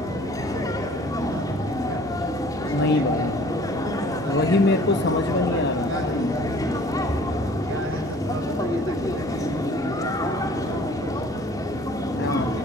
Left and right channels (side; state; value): left; noise; rumble, 30 dB below the sound